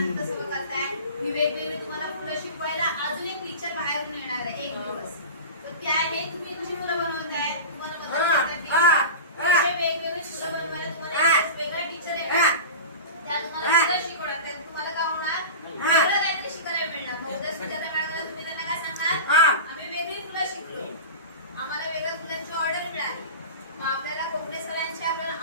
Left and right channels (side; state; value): both; inverted; correlation -0.30